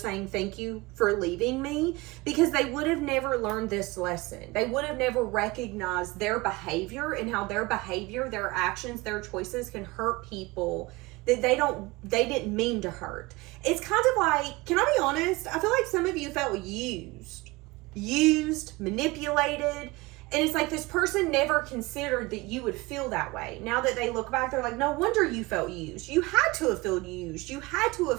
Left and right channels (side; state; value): left; quieter; 22.7 dB